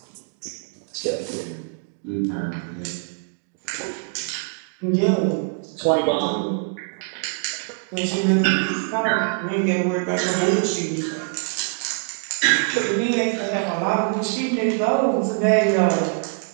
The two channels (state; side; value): quieter; left; 39.3 dB